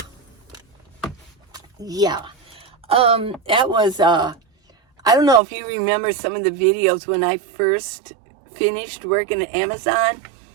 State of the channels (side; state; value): left; drops out; at 5.4 s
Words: Yeah. That was, I don't know if you remember some of the videos when I first finished working at Amazon.